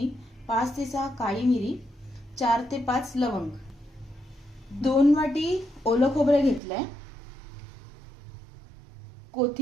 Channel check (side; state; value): left; drops out; at 6.6 s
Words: 5 ते 6 काळी मिरी, 4 ते 5 लवंग, 2 वाटी ओलं खोबरं घेतलंय,